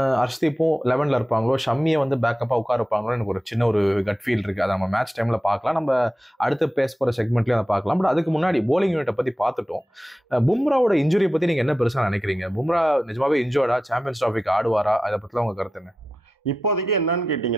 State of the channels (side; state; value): both; normal; correlation 0.92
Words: ஹர்ஷ்தீப்பும் 11ல இருப்பாங்களோ, ஷம்மியை வந்து பேக்கப்பா உட்கார இருப்பாங்களோ, எனக்கு ஒரு சின்ன ஒரு கட் ஃபீல் இருக்கு. அதை நம்ம மேட்ச் டைம்ல பார்க்கலாம், நம்ம அடுத்து பேச போற செக்மெண்ட்லயும் அதை பார்க்கலாம். பட் அதுக்கு முன்னாடி போலிங் யூனிட்டை பத்தி பார்த்துட்டோம். பும்ராவோட இன்ஜுரியை பத்தி நீங்க என்ன பெருசா நினைக்கிறீங்க? பும்ரா நிஜமாவே இன்ஜோர்டா? சாம்பியன்ஸ் டிராஃபிக்கு ஆடுவாரா? அதை பத்திலாம் உங்க கருத்து என்ன? இப்போதைக்கு என்னன்னு